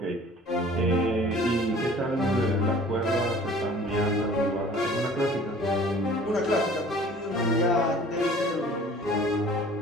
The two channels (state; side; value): normal; both; correlation 0.48